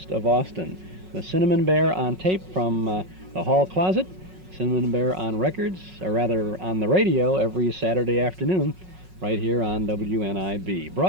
of Austin. The Cinnamon Bear on tape from the Hall Closet, Cinnamon Bear on records, or rather on the radio every Saturday afternoon, right here on WNIB.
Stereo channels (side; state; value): left; late; 5.4 ms